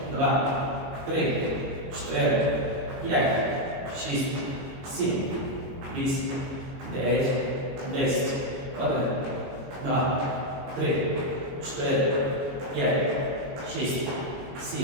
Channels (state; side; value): late; left; 22 ms